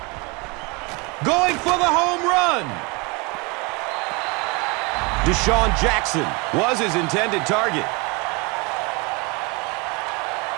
Going for the home run. Deshaun Jackson was his intended target.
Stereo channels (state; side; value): quieter; left; 27.7 dB